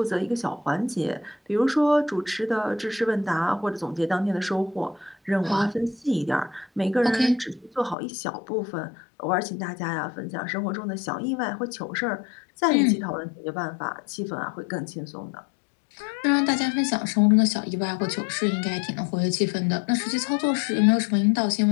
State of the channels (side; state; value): right; drops out; at 8.0 s